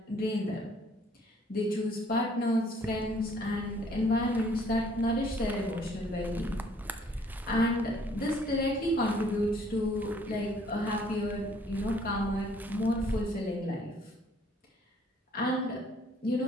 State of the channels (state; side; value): normal; both; correlation 0.61